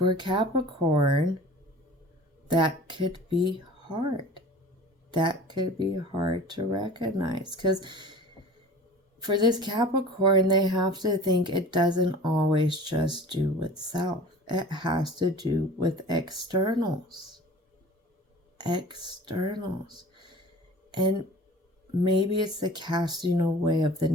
Capricorn, that could be hard. That could be hard to recognize, because for this Capricorn, they have to think it doesn't always just do with self. It has to do with externals. Externals. And maybe it's the casting away of the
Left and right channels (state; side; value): normal; both; correlation 0.42